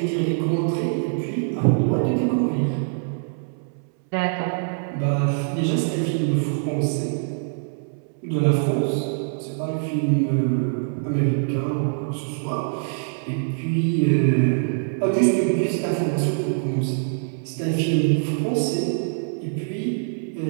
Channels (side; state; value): left; silent; 63 dB below the other